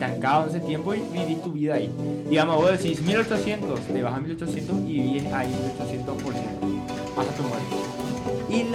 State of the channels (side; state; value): both; identical; correlation 1.00